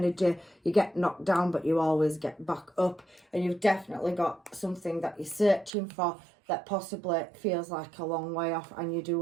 You get knocked down, but you always get back up, and you've definitely got something that you're searching for. that possibly feels like a long way off, and you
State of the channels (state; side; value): drops out; left; at 5.7 s